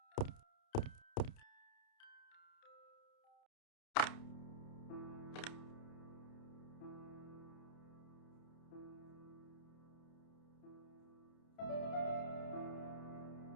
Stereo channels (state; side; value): late; right; 29 ms